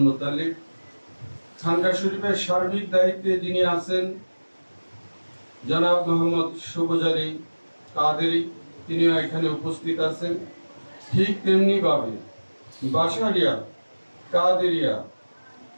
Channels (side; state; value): both; inverted; correlation -1.00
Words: মুতালিব। খানকা শরীফের সার্বিক দায়িত্বে যিনি আছেন জনাব মোহাম্মদ সুবজারি কাদেরি, তিনিও এখানে উপস্থিত আছেন। ঠিক তেমনি ভাবে বাসারিয়া কাদেরিয়া